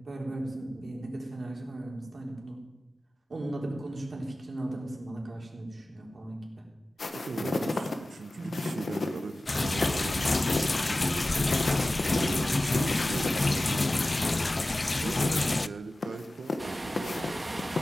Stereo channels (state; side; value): normal; both; correlation 0.96